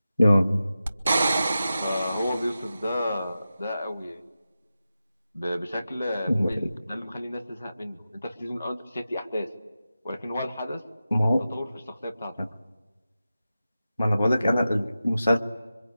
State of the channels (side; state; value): both; inverted; correlation -0.92